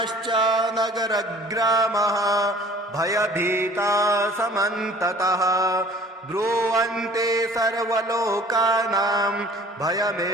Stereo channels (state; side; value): normal; both; correlation 0.49